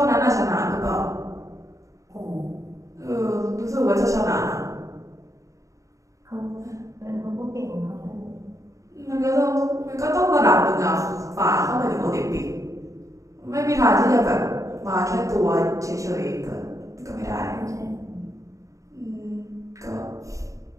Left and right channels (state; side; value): late; left; 0.16 ms